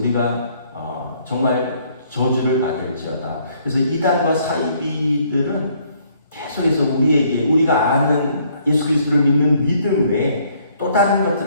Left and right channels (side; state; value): both; inverted; correlation -0.65